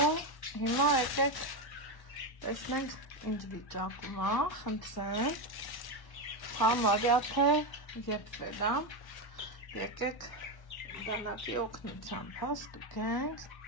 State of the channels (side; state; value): right; late; 1.1 ms